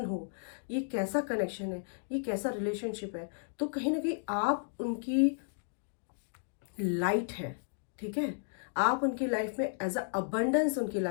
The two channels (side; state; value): right; silent; digital silence